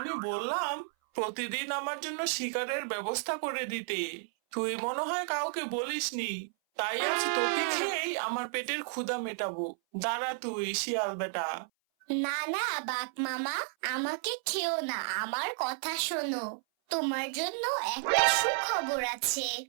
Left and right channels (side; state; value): left; silent; 56 dB below the other